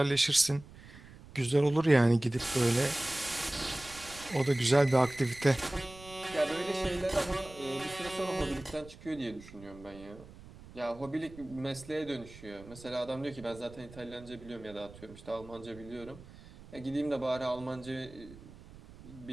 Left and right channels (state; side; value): noise; right; rumble, 18 dB below the sound